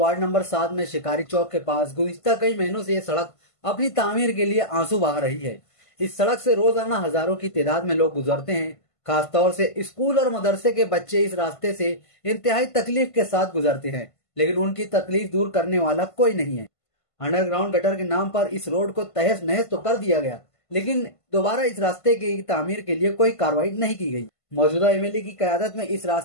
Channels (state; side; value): late; right; 1.5 ms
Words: नंबर 7 में शिकारी चौक के पास गुज़िश्ता कई महीनों से ये सड़क अपनी तामीर के लिए आंसू बहा रही है। इस सड़क से रोजाना हजारों की तादाद में लोग गुजरते हैं। खासतौर से स्कूल और मदरसे के बच्चे इस रास्ते से इंतहाई तकलीफ के साथ गुजरते हैं, लेकिन उनकी तकलीफ दूर करने वाला कोई नहीं है। अंडरग्राउंड गटर के नाम पर इस रोड को तहस नहस तो कर दिया गया, लेकिन दोबारा इस रास्ते की तामीर के लिए कोई कार्रवाई नहीं की गई। मौजूदा एमएलए की क़यादत में इस